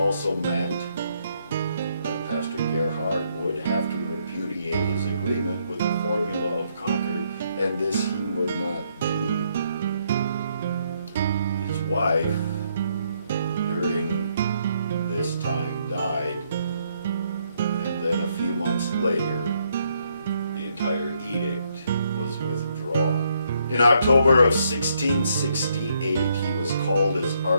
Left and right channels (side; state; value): both; inverted; correlation -0.73